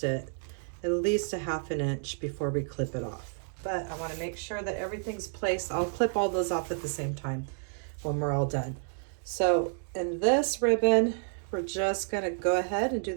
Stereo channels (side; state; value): left; silent; digital silence